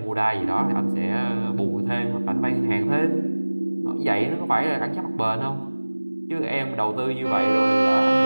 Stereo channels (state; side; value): inverted; both; correlation -1.00